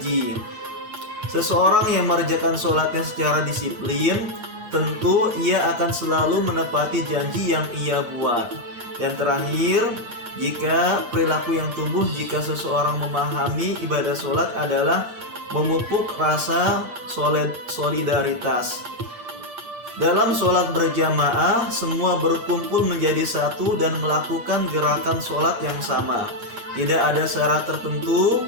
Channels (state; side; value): late; left; 8.5 ms